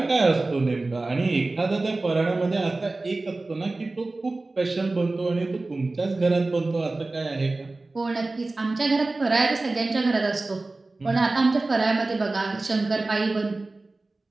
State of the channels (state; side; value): quieter; left; 3.2 dB